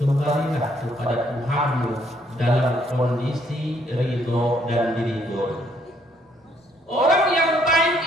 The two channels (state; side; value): normal; both; correlation 0.68